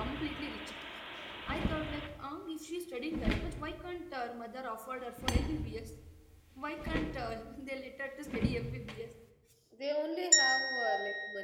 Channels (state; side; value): identical; both; correlation 1.00